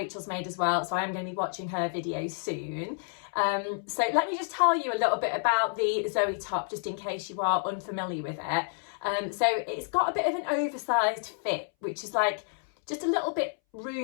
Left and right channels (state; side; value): silent; right; 58 dB below the other